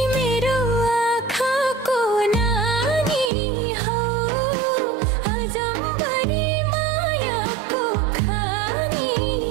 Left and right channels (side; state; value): left; drops out; at 3.3 s